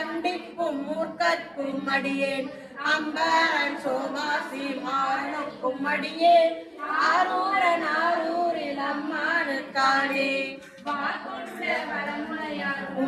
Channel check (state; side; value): identical; both; correlation 1.00